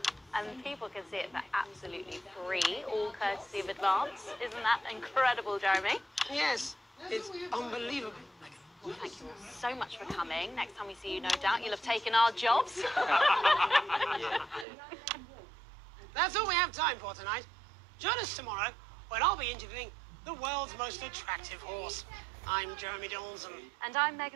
And people can see it for absolutely free, all courtesy of Advance. Isn't that incredible, Jeremy? Yes, it's unbelievable. Well, thank you all so much for coming. Next time we see you, no doubt, you'll have taken our jobs. That's all we have time for tonight. Join us tomorrow when I'll be interviewing the world's most attractive horse. I'm Jeremy Johnson. And I'm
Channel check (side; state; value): left; drops out; at 14.7 s